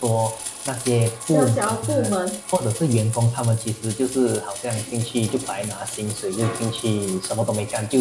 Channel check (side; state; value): both; identical; correlation 1.00